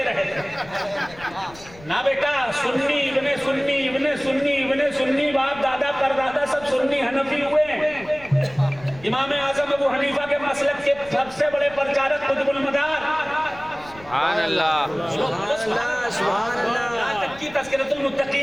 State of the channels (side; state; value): left; noise; rumble, 21 dB below the sound